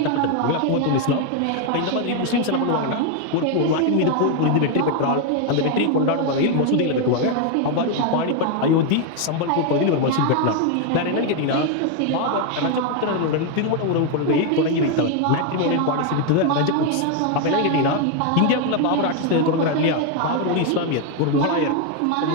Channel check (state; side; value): different; both; correlation 0.01